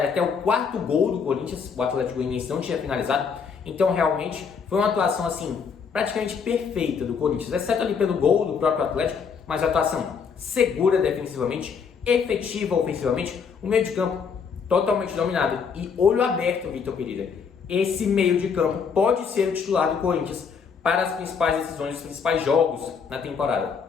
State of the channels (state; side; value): quieter; right; 6.1 dB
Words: até o quarto gol do Corinthians, o Atlético Goianiense não tinha finalizado. Então, realmente, foi uma atuação, assim, praticamente perfeita do Corinthians, exceto ali pelo gol do próprio Atlético, mas a atuação segura defensivamente, efetiva ofensivamente, o meio de campo totalmente dominado e olho aberto, Vitor Pereira. Esse meio de campo pode ser o titular do Corinthians para as principais decisões, os principais jogos na